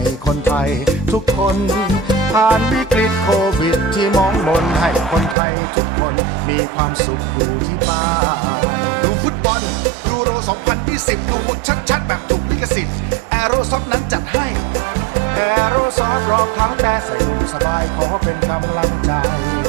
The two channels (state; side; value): drops out; left; at 5.4 s